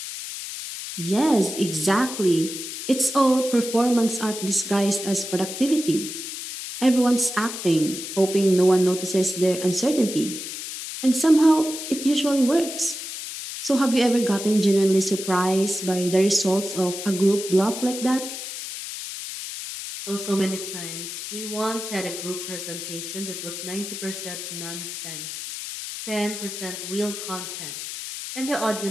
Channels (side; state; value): left; noise; hiss, 8 dB below the sound